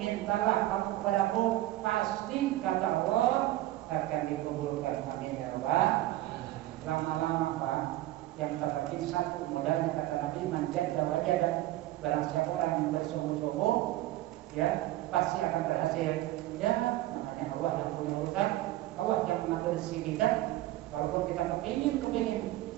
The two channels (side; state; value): left; quieter; 15.7 dB